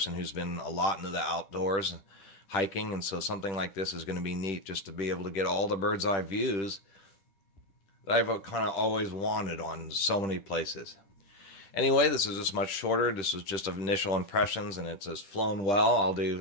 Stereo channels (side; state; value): right; late; 10 ms